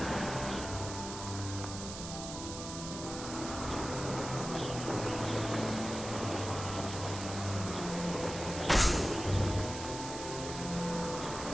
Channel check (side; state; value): right; noise; hiss, 9 dB below the sound